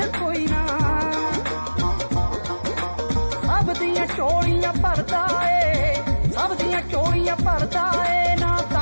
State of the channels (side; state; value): both; inverted; correlation -1.00